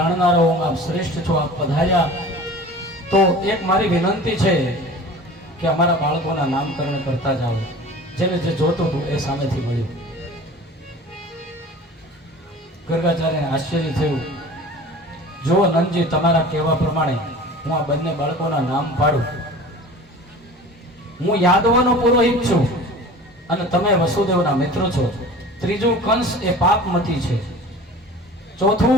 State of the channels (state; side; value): normal; both; correlation 0.41